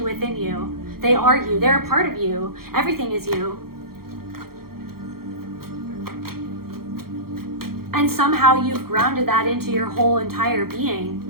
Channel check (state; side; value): late; left; 0.94 ms